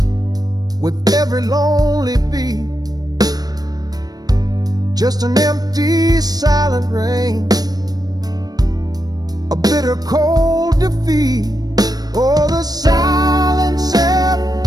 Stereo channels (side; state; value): left; late; 0.19 ms